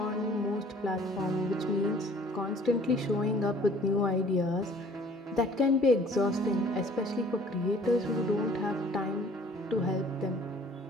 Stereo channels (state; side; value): normal; both; correlation 0.53